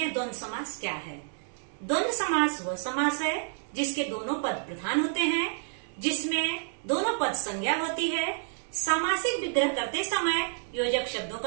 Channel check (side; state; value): left; silent; digital silence